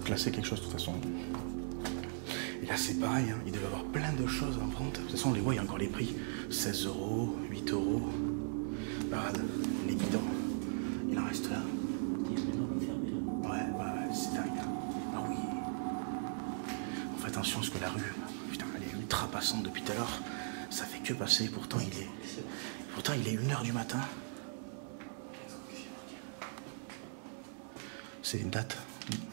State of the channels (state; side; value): silent; left; digital silence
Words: classer quelque chose, de toute façon. Et là, c'est pareil, hein. Il devait y avoir plein de choses en vente. De toute façon, on les voit, il y a encore les prix. 16 €, 8 €. Regarde, les bidons. Il en reste là. Ouais, c'est dingue. Ah oui. fais attention parce que la rue, putain, elle est ultra passante depuis tout à l'heure. Ça fait que passer, pourtant il est 1h du matin. C'est une date,